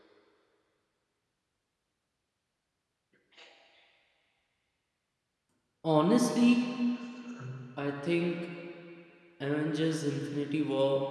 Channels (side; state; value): both; identical; correlation 1.00